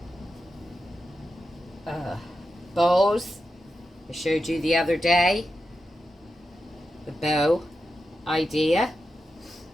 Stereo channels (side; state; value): both; normal; correlation 0.90